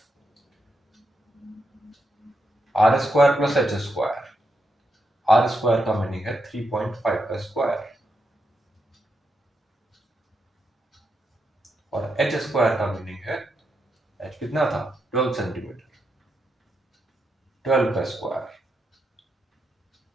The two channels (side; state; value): both; normal; correlation 0.84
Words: r square plus h square, r square का मीनिंग है 3.5 का स्क्वायर और एच स्क्वायर का मीनिंग है, एच कितना था 12 सेंटीमीटर, 12 का स्क्वायर।